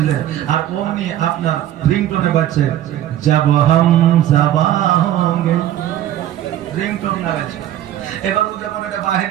আর অমনি আপনার রিংটোনে বাজছে যাব হাম যাবা হোঙ্গে, রিংটোন লাগাচ্ছে। এবার ও যখন এটা বাহির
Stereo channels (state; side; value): quieter; left; 12.2 dB